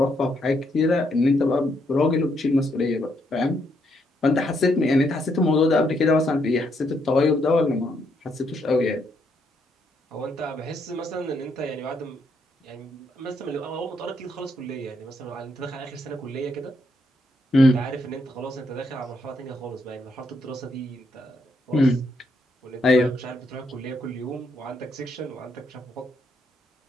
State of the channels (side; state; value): both; normal; correlation 0.75